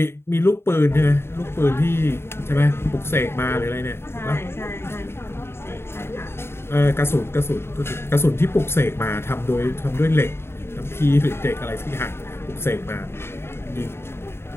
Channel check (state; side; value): late; right; 0.12 ms